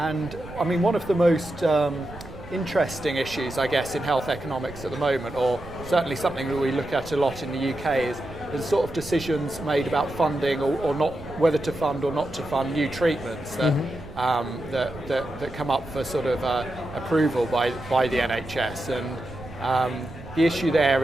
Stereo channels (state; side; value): noise; right; rumble, 15 dB below the sound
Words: I mean, one of the most interesting issues, I guess, in health economics at the moment, or certainly something that we look at a lot in the UK, is the sort of decisions made about funding or not, whether to fund or not to fund new treatments that that come up for sort of approval by the NHS. And the issue